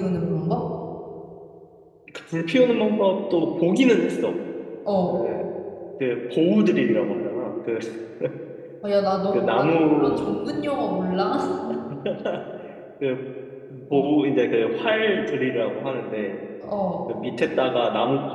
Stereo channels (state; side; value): identical; both; correlation 1.00